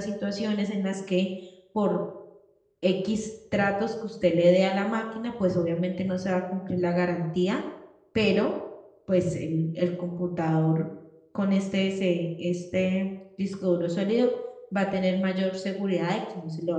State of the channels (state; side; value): identical; both; correlation 1.00